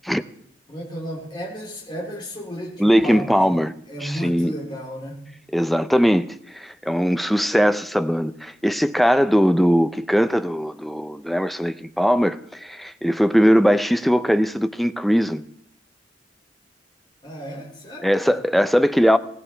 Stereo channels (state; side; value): normal; both; correlation 0.97